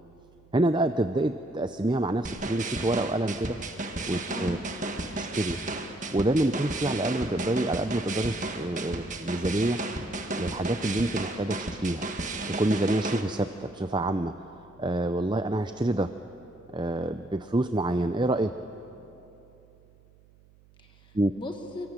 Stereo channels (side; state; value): right; noise; hum, 28 dB below the sound